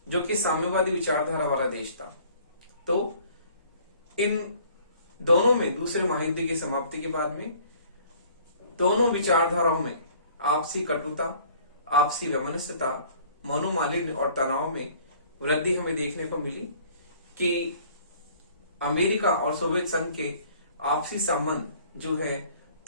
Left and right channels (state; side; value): inverted; both; correlation -0.54